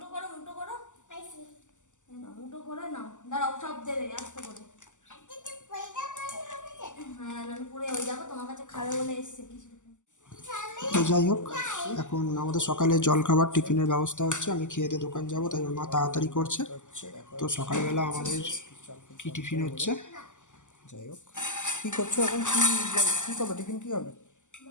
করো, মুঠো করো, মুঠো করে নাও। দাঁড়াও, সব দেবে আস্তে করে। হ্যাঁ, নাহলে পড়ে হয়ে যাবে। তোমার কাছে খাবে বলে এসছে কিছু। তো যাই হোক, এখন আমাদের সকালে জলখাবার টিফিনের ব্যবস্থা হচ্ছে। আমি খেয়ে দিয়ে দোকান যাবো, তাই ওর মা তাড়াতাড়ি করছে। তো সকালবেলা আমাদের কি টিফিন হচ্ছে। যাই হোক, কি করছো এখন? কি করবে? টিফিন কি হবে?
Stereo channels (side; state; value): right; late; 0.85 ms